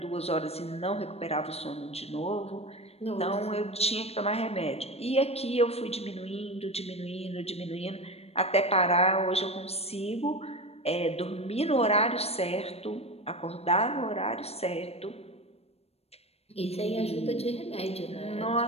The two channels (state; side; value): late; right; 0.30 ms